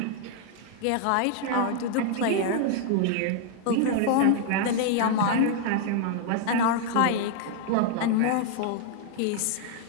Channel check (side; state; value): both; different; correlation 0.00